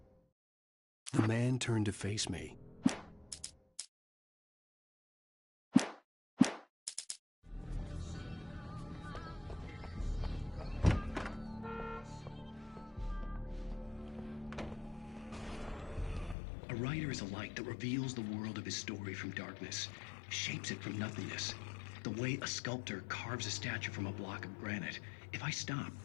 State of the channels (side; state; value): right; drops out; at 16.4 s